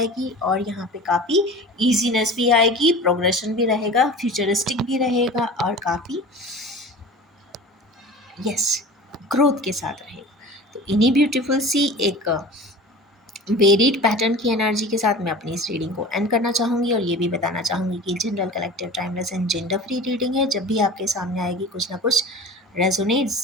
और यहाँ पे काफ़ी ईजीनेस भी आएगी, प्रोग्रेशन भी रहेगा, फ्यूचरिस्टिक भी रहेगा, और काफ़ी यस ग्रोथ के साथ रहेगा। तो इन्हीं ब्यूटीफुल सी एक वेरिड पैटर्न की एनर्जी के साथ मैं अपनी इस रीडिंग को एंड करना चाहूँगी, और ये भी बताना चाहूँगी कि general collective timeless and gender free reading है। जब भी आपके सामने आएगी कुछ ना कुछ रेजोनेट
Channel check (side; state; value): both; normal; correlation 0.38